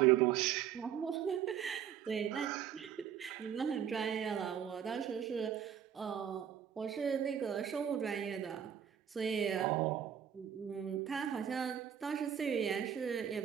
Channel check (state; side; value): quieter; left; 9.0 dB